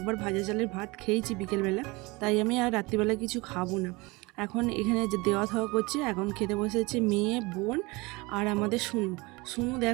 ভাজা চালের ভাত খেয়েছি বিকেলবেলা, তাই আমি আর রাত্রিবেলা কিছু খাবো না। এখন এখানে যে দেওয়া থাওয়া করছে, এখন খেতে বসেছে মেয়ে, বোন আর আমাদের শুনু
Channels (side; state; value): left; quieter; 24.4 dB